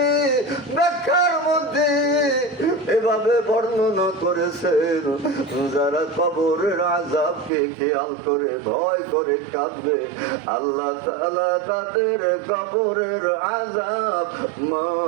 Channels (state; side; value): drops out; left; at 7.5 s